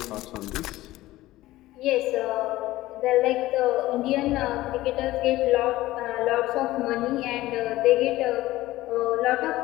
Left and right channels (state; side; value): quieter; right; 16.9 dB